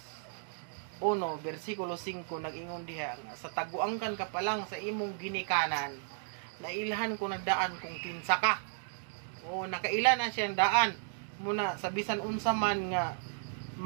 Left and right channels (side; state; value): left; silent; digital silence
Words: 1 versikulo 5 nag-ingon diha nga sa taguangkan ka pa lang sa imong ginikanan nailhan ko na daan kung kinsa ka. O nakaila na siyang daan muna sa bisan unsa man nga